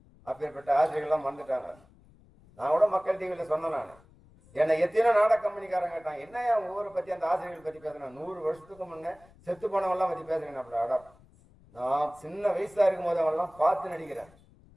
அப்பேற்பட்ட ஆசிரியர்கள்லாம் வந்துட்டாங்க. நான் கூட மக்கள் டிவியில் சொன்னேன். நான் என்னை எத்தனை நாடக கம்பெனிக்காரங்க கேட்டாங்க, என்ன ஊரை பற்றி அந்த ஆசிரியர்கள் பற்றி பேசுறேன். 100 வருஷத்துக்கு முன்னே செத்து போனவெல்லாம் பற்றி பேசுறேன். அப்படி அடம் நான் சின்ன வயசா இருக்கும் போது அவெல்லாம் பார்த்து நடிக்கிறேன்.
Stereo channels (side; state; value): left; noise; rumble, 27 dB below the sound